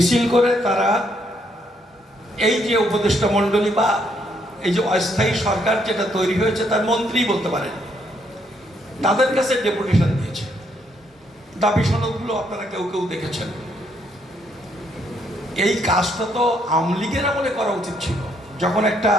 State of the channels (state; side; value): normal; both; correlation 0.72